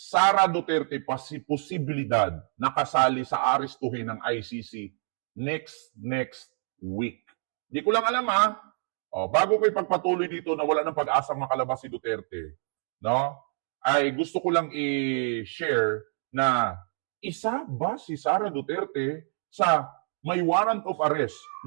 Duterte posibilidad na kasali sa arestuhin ng ICC next week. Di ko lang alam bago ko ipagpatuloy dito na wala ng pag-asang makalabas si Duterte, no, ay gusto ko lang i-share na isa ba si Sara Duterte sa may warrant of arrest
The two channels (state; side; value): silent; left; 60 dB below the other